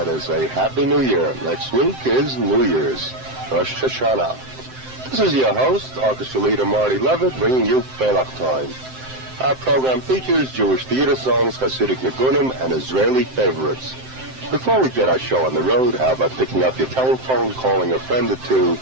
is a Happy New Year. Next week is New Year's, Rosh Hashanah. This is your host, orchestra leader Marty Levitt, bringing you Freilach Time. Our program features Jewish theater songs, Hasidic Nigunim, and Israeli favorites. Before we get our show on the road, how about picking up your telephone, calling a friend or two,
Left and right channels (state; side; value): late; left; 7.7 ms